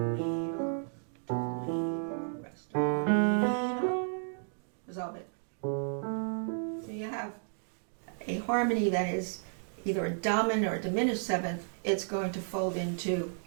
Resolve it. So you have a harmony that is either a dominant or a diminished seventh. It's going to fold into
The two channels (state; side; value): silent; left; digital silence